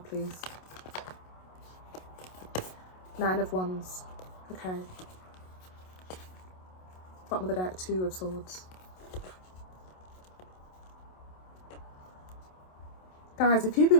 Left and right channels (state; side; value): late; right; 27 ms